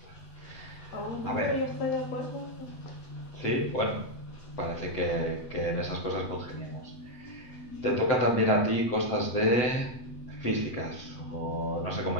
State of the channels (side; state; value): right; late; 8.1 ms